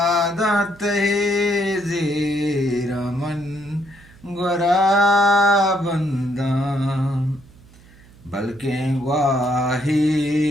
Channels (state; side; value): noise; right; hum, 24 dB below the sound